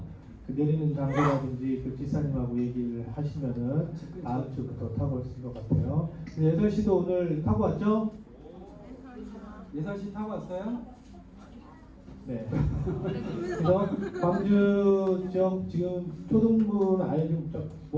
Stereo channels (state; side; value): identical; both; correlation 1.00